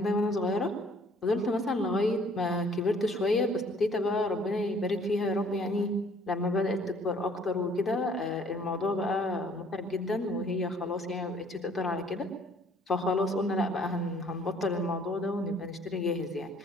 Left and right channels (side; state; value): both; normal; correlation 0.58